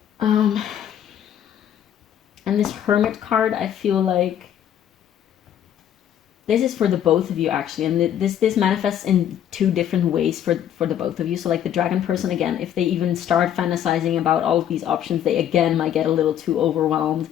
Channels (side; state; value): right; quieter; 10.2 dB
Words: And this Hermit card, I feel like this is for the both of you actually, and this manifests in two different ways for the both of you. So like the dragon person, again, if they even start fantasizing about all of these options, they again might get a little too overwhelmed.